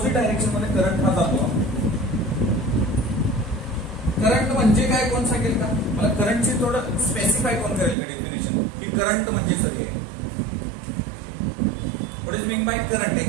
डायरेक्शन मध्ये करंट हा जातो. करंट म्हणजे काय कोण सांगेल का मला, करंटची थोडं स्पेसिफाय कोण करेल का डेफिनेशन, की करंट म्हणजे सर हे what is mean by current,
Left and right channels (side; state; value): left; drops out; at 8.0 s